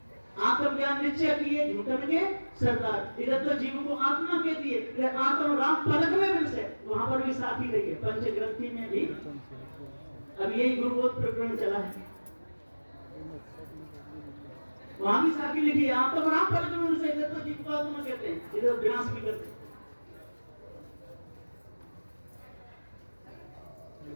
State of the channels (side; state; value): both; inverted; correlation -1.00